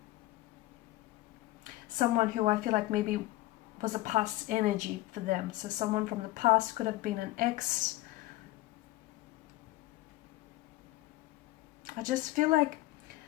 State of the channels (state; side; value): quieter; right; 17.3 dB